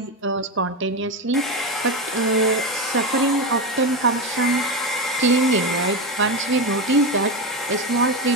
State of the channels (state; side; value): normal; both; correlation 0.15